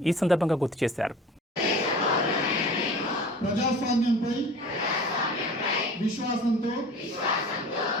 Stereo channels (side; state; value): both; normal; correlation 0.41